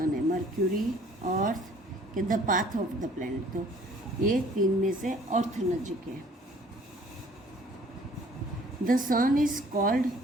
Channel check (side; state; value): both; normal; correlation 0.55